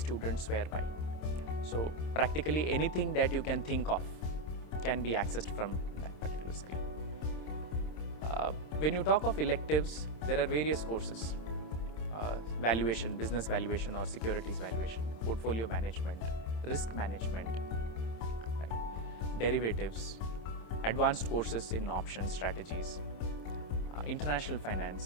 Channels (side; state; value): right; late; 26 ms